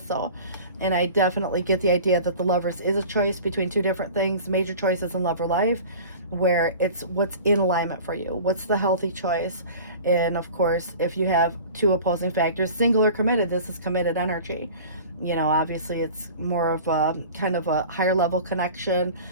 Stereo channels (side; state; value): both; inverted; correlation -0.40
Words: And I definitely get the idea that the Lovers is a choice between two different things, major choices in love or life, where it's what's in alignment for you. What's the healthy choice? And of course, if you have two opposing factors, single or committed, this is committed energy. You know, obviously it's more of a kind of a higher level connection,